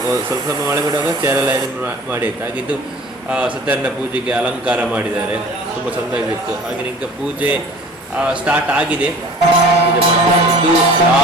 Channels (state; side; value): normal; both; correlation 0.45